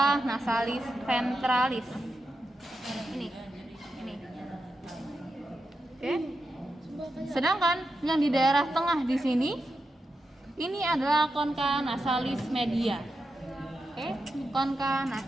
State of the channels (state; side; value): normal; both; correlation 0.88